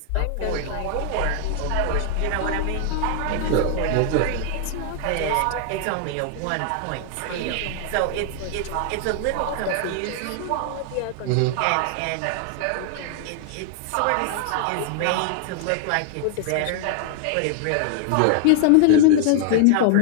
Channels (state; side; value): different; both; correlation 0.00